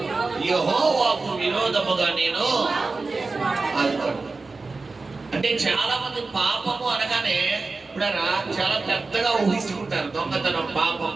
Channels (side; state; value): left; quieter; 3.8 dB